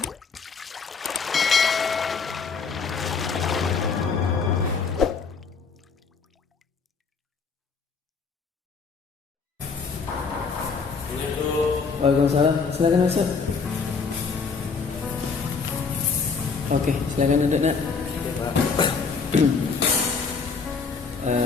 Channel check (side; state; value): right; quieter; 5.1 dB